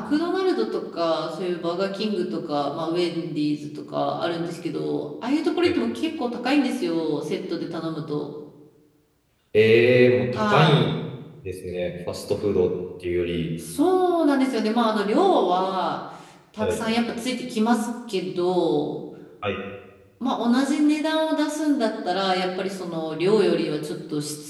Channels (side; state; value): both; identical; correlation 1.00